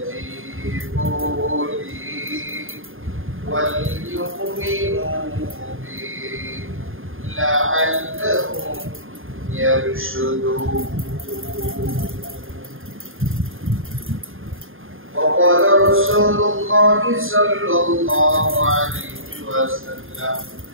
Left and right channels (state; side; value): late; left; 0.59 ms